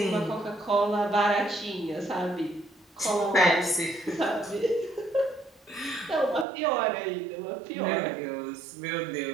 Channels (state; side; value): drops out; left; at 6.5 s